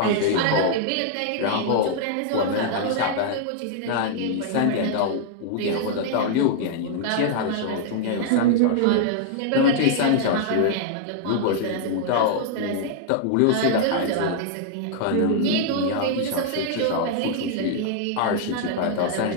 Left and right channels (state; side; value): different; both; correlation -0.01